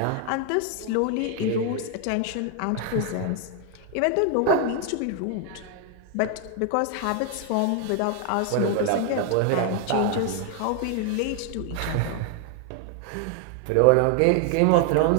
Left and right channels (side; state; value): both; different; correlation 0.00